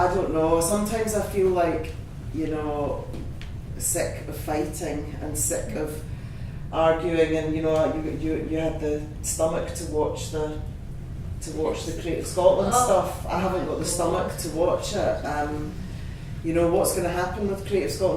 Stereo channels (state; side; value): identical; both; correlation 1.00